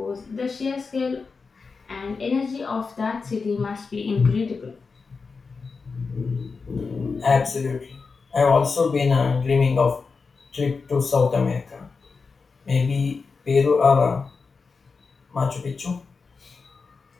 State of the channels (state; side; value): quieter; right; 4.7 dB